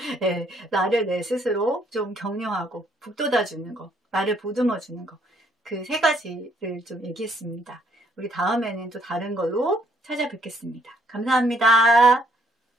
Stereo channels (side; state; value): both; normal; correlation 0.68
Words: 네, 나를 내 스스로 좀 격려하고 북돋아주는 거, 나를 보듬어주는 거, 그 세 가지를 좀 얘기했습니다. 우리 다음에는 또 다른 걸로 찾아뵙겠습니다. 감사합니다.